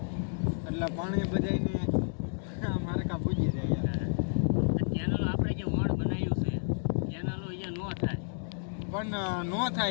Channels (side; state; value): right; silent; digital silence